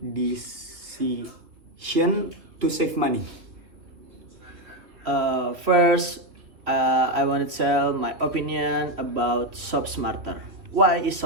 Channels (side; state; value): left; late; 3.1 ms